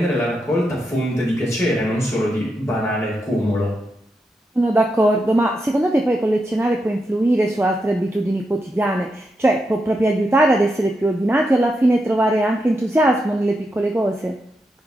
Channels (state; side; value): normal; both; correlation 0.85